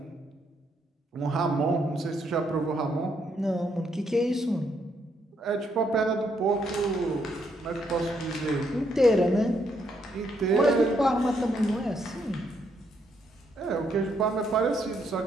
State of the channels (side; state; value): both; normal; correlation 0.74